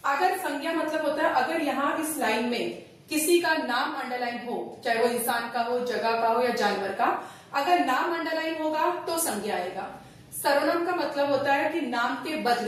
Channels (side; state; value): both; identical; correlation 1.00